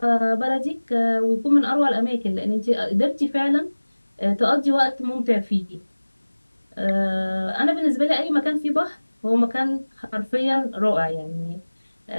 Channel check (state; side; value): inverted; both; correlation -1.00